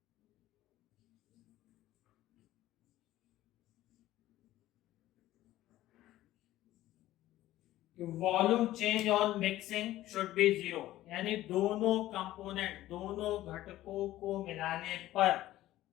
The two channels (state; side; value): quieter; right; 15.0 dB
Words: volume change on mixing should be 0, यानी दोनों कंपोनेंट, दोनों घटकों को मिलाने पर